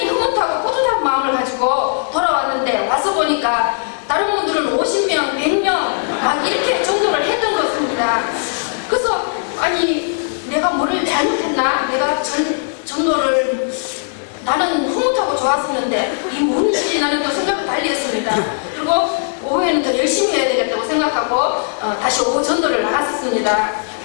흐뭇하고 뿌듯한 마음을 가지고 돌아왔는데 와서 보니까 다른 분들은 50명, 100명 막 이렇게 전도를 했던 것 같습니다. 그래서 아니 내가 뭐를 잘못했나? 내가 전도를 나는 흐뭇하고 좋았었는데 이 뭔지 나는 또 생각을 달리 했습니다. 그리고 오후에는 더 열심히 해야 되겠다고 생각하고 다시 오후 전도를 나갔었습니다.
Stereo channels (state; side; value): silent; right; digital silence